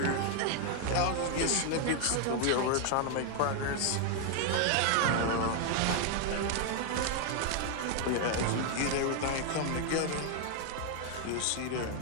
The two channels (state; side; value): different; both; correlation 0.00